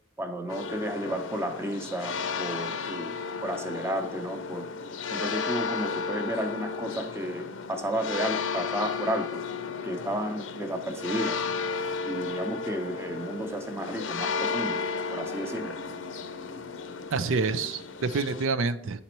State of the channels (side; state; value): both; normal; correlation 0.26